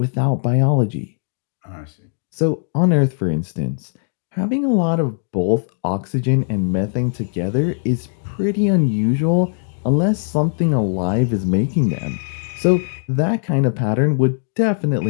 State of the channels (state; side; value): silent; right; digital silence